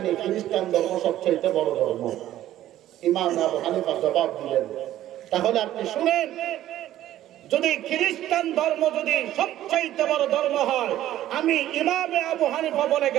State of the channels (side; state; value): left; quieter; 13.2 dB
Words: খ্রিস্টান ধর্ম সবচাইতে বড় ধর্ম। ইমাম আবু হানিফা জবাব দিলেন, তাহলে আপনি শুনেন, যদি খ্রিস্টান ধর্ম যদি সবচাইতে বড় ধর্ম হয়, আমি ইমাম আবু হানিফা বলে